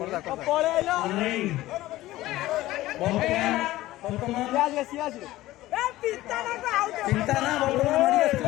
ଚିନ୍ତା ନା ବର୍ତ୍ତମାନ ମାଡ଼ି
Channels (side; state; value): right; quieter; 16.5 dB